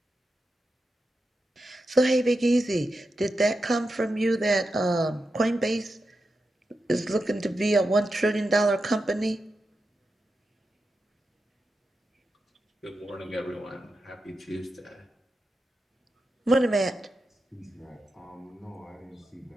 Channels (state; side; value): normal; both; correlation 0.89